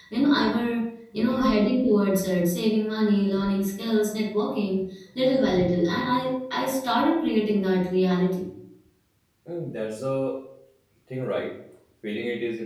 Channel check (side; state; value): both; identical; correlation 1.00